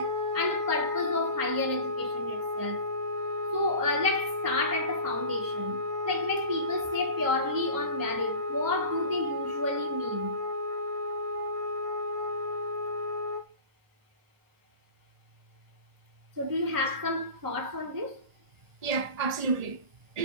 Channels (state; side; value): late; left; 1.5 ms